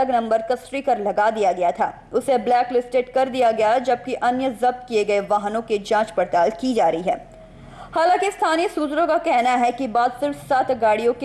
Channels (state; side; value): identical; both; correlation 1.00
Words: नंबर का स्टिकर लगा दिया गया था, उसे ब्लैक लिस्टेड कर दिया गया, जबकि अन्य जब्त किए गए वाहनों की जांच पड़ताल की जा रही है। हालांकि स्थानीय सूत्रों का कहना है कि बात सिर्फ 7 गाड़ियों